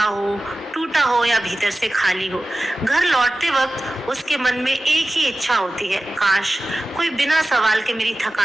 हो, टूटा हो या भीतर से खाली हो। घर लौटते वक्त उसके मन में एक ही इच्छा होती है, काश कोई बिना सवाल के मेरी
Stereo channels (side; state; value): both; normal; correlation 0.95